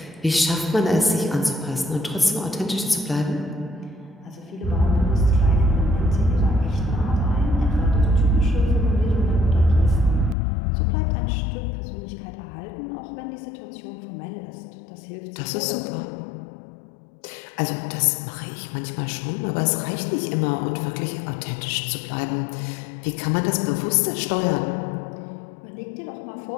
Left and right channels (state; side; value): drops out; right; at 10.4 s